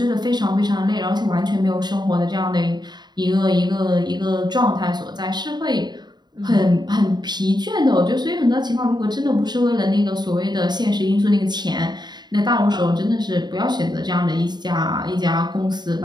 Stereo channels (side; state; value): left; late; 0.21 ms